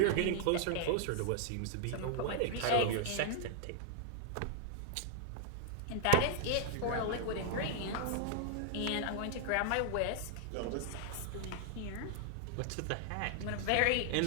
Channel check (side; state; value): both; different; correlation 0.00